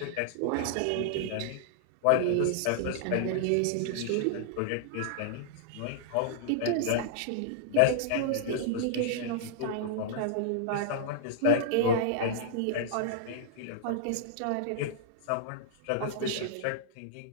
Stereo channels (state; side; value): different; both; correlation -0.01